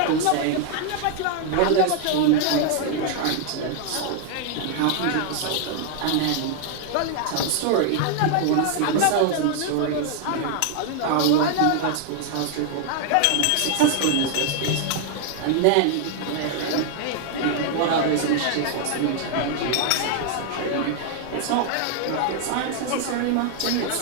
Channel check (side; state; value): both; different; correlation 0.00